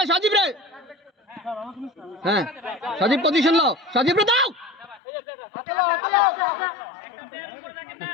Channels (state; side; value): drops out; right; at 5.0 s